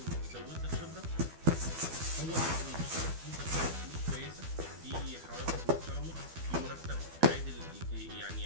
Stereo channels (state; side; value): late; left; 12 ms